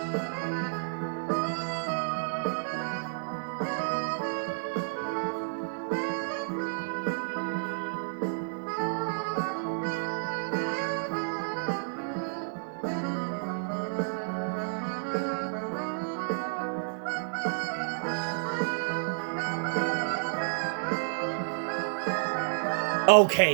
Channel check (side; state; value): left; silent; digital silence